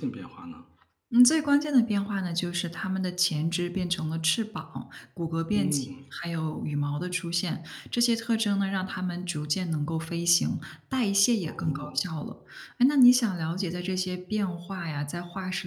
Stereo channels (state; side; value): identical; both; correlation 1.00